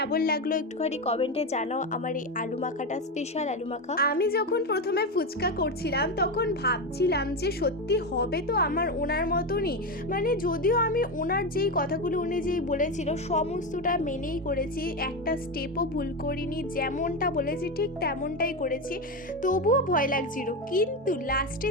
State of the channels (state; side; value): normal; both; correlation 0.15